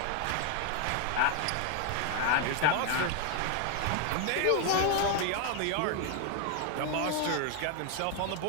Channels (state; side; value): different; both; correlation 0.00